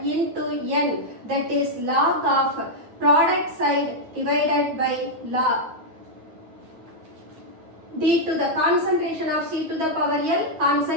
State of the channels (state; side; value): late; left; 9.4 ms